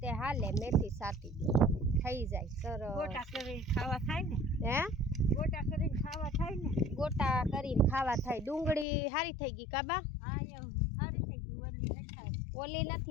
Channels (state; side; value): drops out; right; at 8.8 s